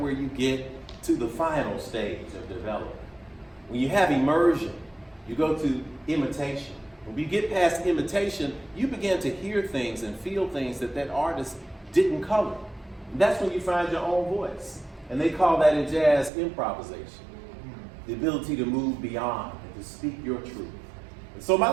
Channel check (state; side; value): drops out; left; at 16.3 s